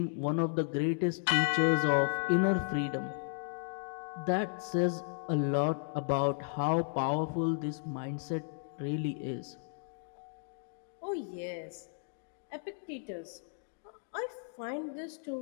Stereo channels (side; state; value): right; silent; digital silence